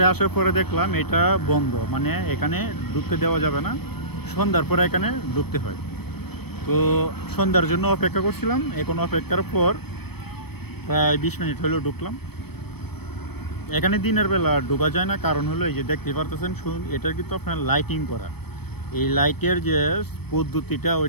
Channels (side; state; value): right; late; 0.97 ms